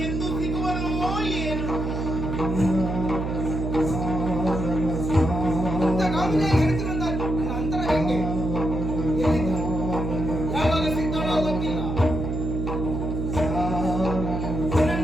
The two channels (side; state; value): right; noise; hum, 3 dB below the sound